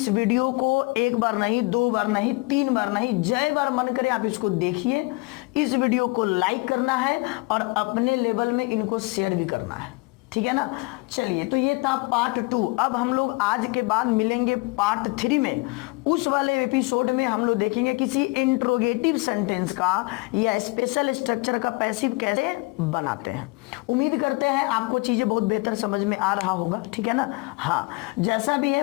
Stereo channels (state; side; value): quieter; right; 25.9 dB